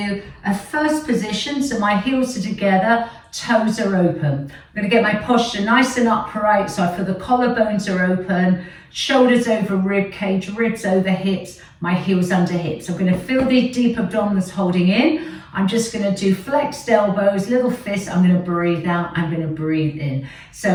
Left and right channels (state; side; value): identical; both; correlation 1.00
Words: a first position, so my heels are together, toes are open. I'm going to get my posture nice and upright, so I feel the collarbones are open, shoulders over rib cage, ribs over hips, my heels under hips. I'm going to feel the deep abdominals holding in. I'm just going to do flexed elbows, little fists. I'm going to breathe out, I'm going to breathe in. So